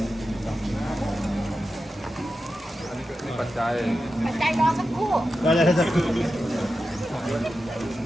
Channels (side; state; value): both; normal; correlation 0.91